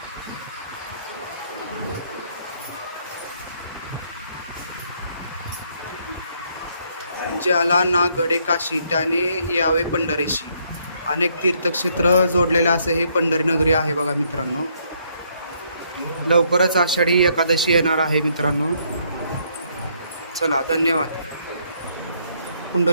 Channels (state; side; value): inverted; both; correlation -0.70